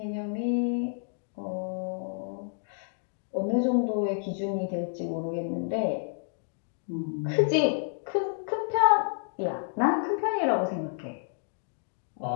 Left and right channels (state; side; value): silent; right; digital silence